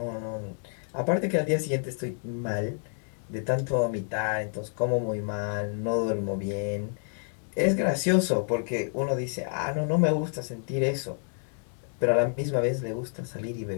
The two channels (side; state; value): right; silent; 59 dB below the other